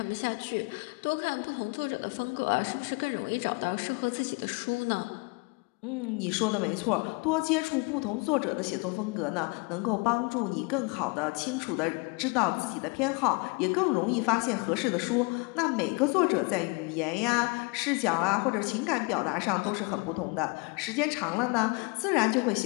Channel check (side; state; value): right; quieter; 30.3 dB